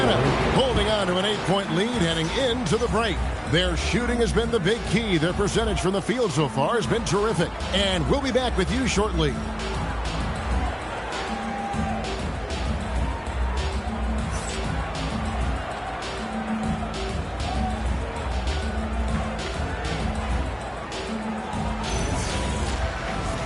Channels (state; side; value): identical; both; correlation 1.00